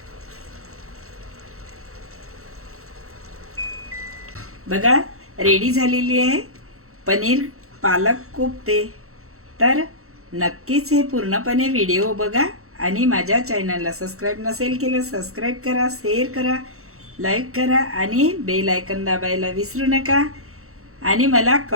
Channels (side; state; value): left; late; 0.63 ms